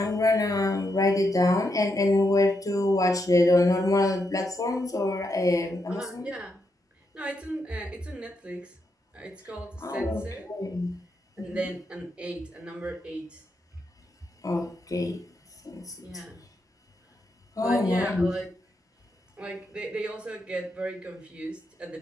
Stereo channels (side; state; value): both; normal; correlation 0.82